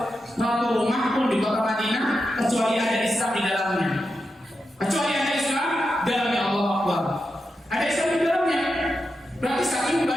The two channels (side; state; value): both; normal; correlation 0.88